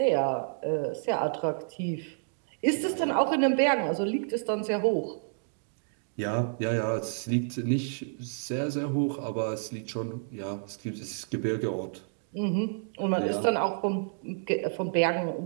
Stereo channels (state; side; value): silent; left; digital silence